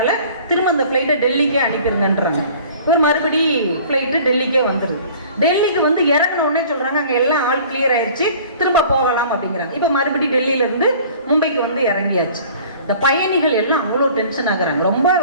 திரும்ப அந்த ஃப்ளைட்டை டெல்லிக்கே அனுப்பிடுங்கன்றாங்க. ஒரு மறுபடி ஃப்ளைட்டு டெல்லிக்கே வந்துருது. டெல்லிக்கு வந்து இறங்கின உடனே சொல்றாங்க அங்கே எல்லாம் ஆல் கிளியர் ஆயிடுச்சு, திரும்ப போகலாம் அப்படிங்கிறாங்க. இப்போ மறுபடி டெல்லியில இருந்து மும்பைக்கு வந்து இறங்கியாச்சு. இந்த பயணிகள் எல்லாம் அவ்வளோ டென்ஷன் ஆகுறாங்க, ரொம்ப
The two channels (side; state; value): both; inverted; correlation -0.48